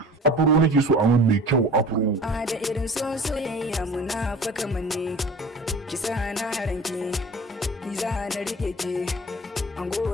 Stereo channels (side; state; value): both; normal; correlation 0.42